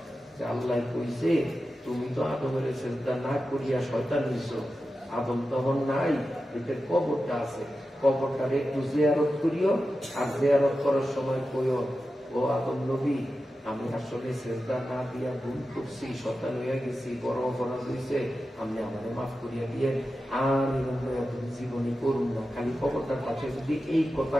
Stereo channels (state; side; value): normal; both; correlation 0.92